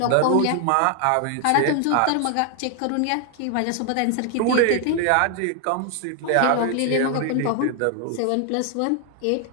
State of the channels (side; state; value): both; different; correlation 0.00